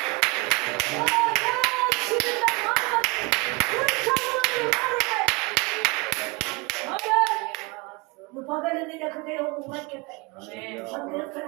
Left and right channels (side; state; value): left; quieter; 26.9 dB